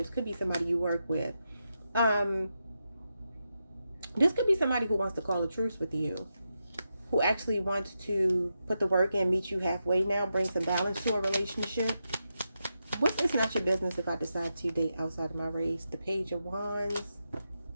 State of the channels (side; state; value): both; inverted; correlation -0.87